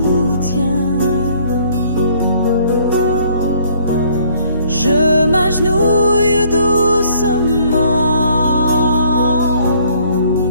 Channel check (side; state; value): both; inverted; correlation -0.62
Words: je m'agenouille doucement